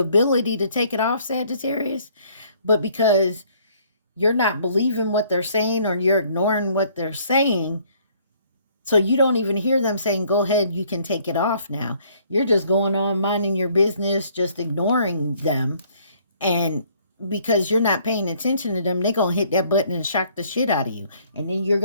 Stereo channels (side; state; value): both; inverted; correlation -0.62